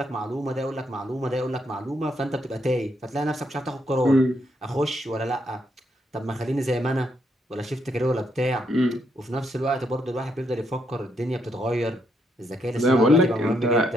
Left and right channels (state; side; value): normal; both; correlation 0.76